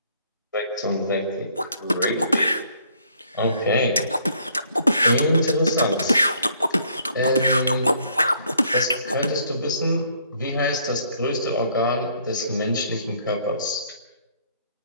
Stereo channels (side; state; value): both; inverted; correlation -0.65